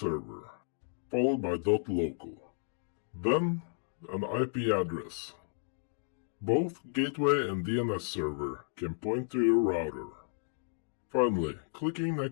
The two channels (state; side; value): silent; right; digital silence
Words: followed by .local. Then, an IP address. Both gateway and DNS server can point to your router. Finally, clicking